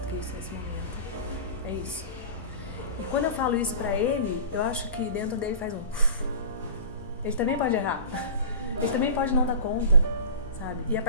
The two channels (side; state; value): both; inverted; correlation -0.35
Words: que isso nesse momento. É isso. E quando eu falo isso pra ele, eu acho que dentro dele faz um... Ele também pode errar. Ele também pode não dar conta, sabe? E a